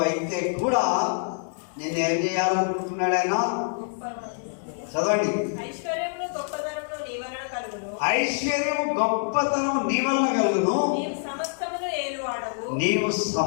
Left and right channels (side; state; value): right; silent; digital silence